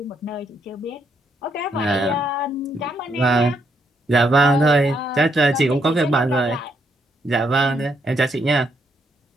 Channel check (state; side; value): normal; both; correlation 0.75